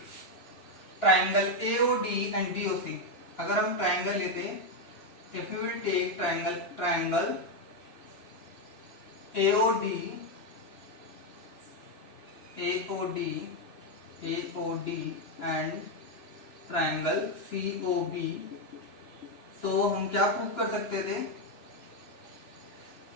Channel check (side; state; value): right; late; 2.9 ms